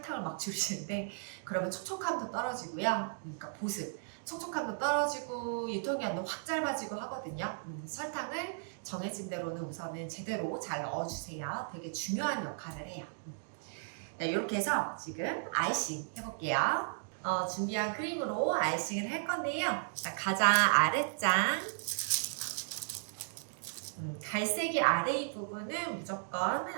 막 줄이시는데 그러면 촉촉함도 떨어지고요. 그러니까 보습, 촉촉함도 떨어지고 유통기한도 확 짧아지고 하거든요. 설탕을 정해진 대로는 우선은 제대로 잘 넣어주세요. 되게 중요한 역할을 해요. 네, 이렇게 해서 지금 아이싱 해볼게요. 준비한 크림으로 아이싱을 할 건데요. 자, 가장 아래장 갈색이 아래 이 부분은 무조건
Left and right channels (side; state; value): left; silent; digital silence